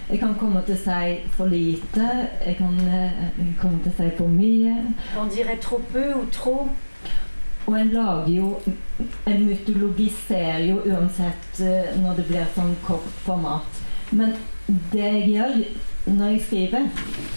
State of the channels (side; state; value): both; inverted; correlation -1.00